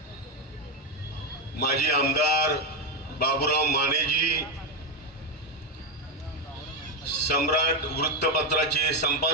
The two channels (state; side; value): normal; both; correlation 0.06